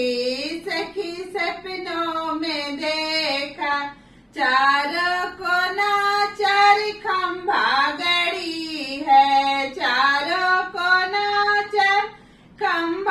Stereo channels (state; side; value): identical; both; correlation 1.00